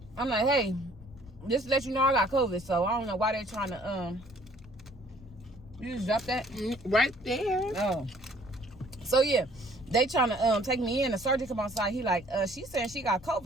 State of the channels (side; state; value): left; noise; rumble, 22 dB below the sound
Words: I'm like, hey, just to let you know I got COVID. So I don't know why they're trying to, you just dropped that? Right there. Oh. So yeah, they trying to take me in. The sergeant come outside. He like, she's saying she got